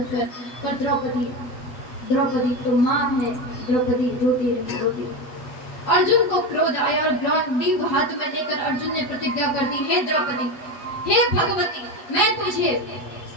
कर। पर द्रौपदी तो माँ है, द्रौपदी रोती रही। अर्जुन को क्रोध आया और ग्रंथि हाथ में लेकर अर्जुन ने प्रतिज्ञा कर दी, हे द्रौपदी, हे भगवती, मैं तुझे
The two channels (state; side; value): late; right; 8.1 ms